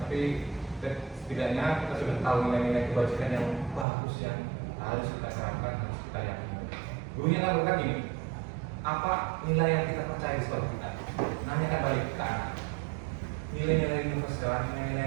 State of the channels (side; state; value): left; drops out; at 3.9 s